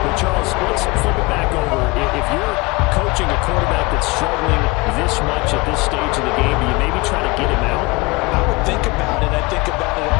But, Charles, let's flip it back over. If you're coaching a quarterback that's struggling this much at this stage of the game, do you maybe try to get him out? I would think about it. I think about it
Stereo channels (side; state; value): right; quieter; 25.2 dB